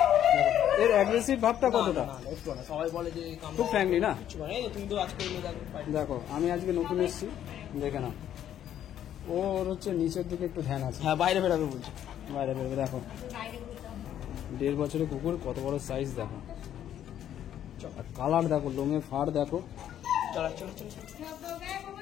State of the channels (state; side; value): quieter; right; 10.7 dB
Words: এর অ্যাগ্রেসিভ ভাবটা কতটা? সবাই বলে যে খুব ফ্র্যাঙ্কলি না? তুমি তো আজকে দেখো আমি আজকে নতুন এসেছি, দেখে নাও। ওর হচ্ছে নিচের দিকে একটু ধ্যান আছে। হ্যাঁ, বাইরে বেরোবে বলছে, বাইরে বেরোবে। দেখো 1.5 বছরের কুকুর, কত বড় সাইজ দেখো, কালার দেখো, লোমে ফাড় দেখো।